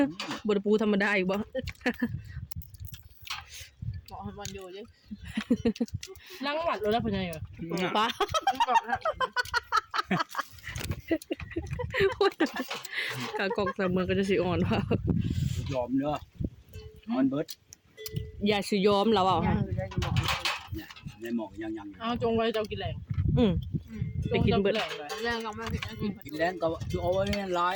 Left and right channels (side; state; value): both; identical; correlation 1.00